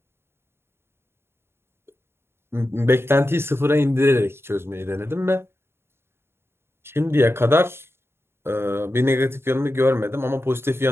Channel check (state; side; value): late; left; 0.12 ms